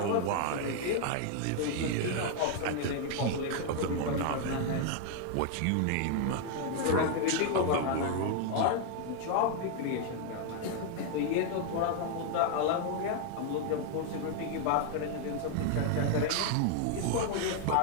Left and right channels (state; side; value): different; both; correlation 0.00